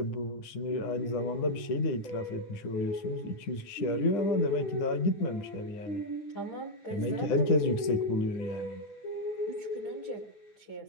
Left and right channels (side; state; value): right; late; 10 ms